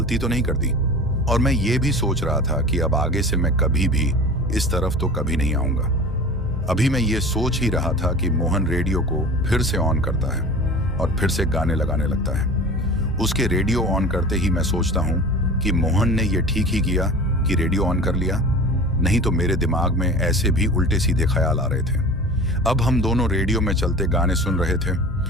तो नहीं कर दी, और मैं ये भी सोच रहा था कि अब आगे से मैं कभी भी इस तरफ तो कभी नहीं आऊंगा। अभी मैं ये सोच ही रहा था कि मोहन रेडियो को फिर से ऑन करता है और फिर से गाने लगाने लगता है। उसके रेडियो ऑन करते ही मैं सोचता हूँ कि मोहन ने ये ठीक ही किया कि रेडियो ऑन कर लिया, नहीं तो मेरे दिमाग में ऐसे भी उल्टे सीधे ख्याल आ रहे थे। अब हम दोनों रेडियो में चलते गाने सुन रहे थे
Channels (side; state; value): both; normal; correlation 0.37